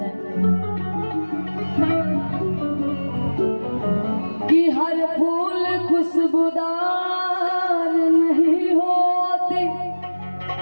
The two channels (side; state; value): both; inverted; correlation -1.00